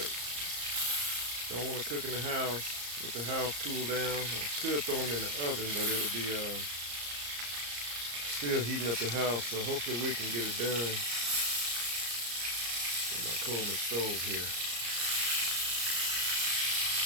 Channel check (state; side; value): late; left; 34 ms